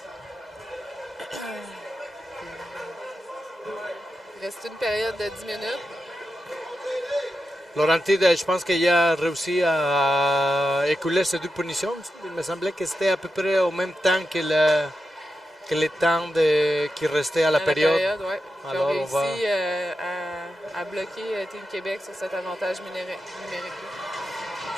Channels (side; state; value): both; normal; correlation 0.89